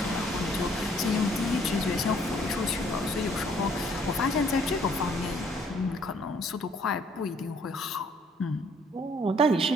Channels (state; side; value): normal; both; correlation 0.63